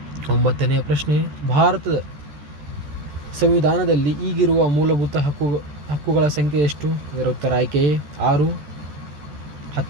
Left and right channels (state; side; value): late; left; 14 ms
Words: 9ನೇ ಪ್ರಶ್ನೆ, ಭಾರತದ ಸಂವಿಧಾನದಲ್ಲಿ ಈಗಿರುವ ಮೂಲಭೂತ ಹಕ್ಕುಗಳ ಸಂಖ್ಯೆ ಎಷ್ಟು? ಇದರ ಉತ್ತರ ಆಯ್ಕೆ ಎ, 6.